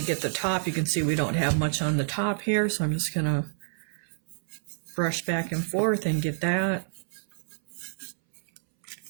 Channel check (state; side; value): silent; left; 59 dB below the other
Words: get the top. You can see we don't have much on the top here, so I'm just gonna brush back and forth and get that.